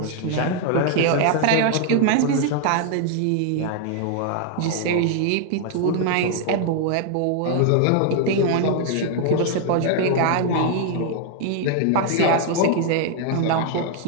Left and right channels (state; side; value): different; both; correlation 0.00